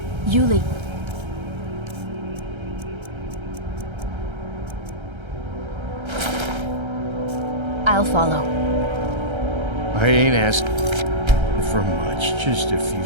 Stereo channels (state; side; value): late; left; 1.3 ms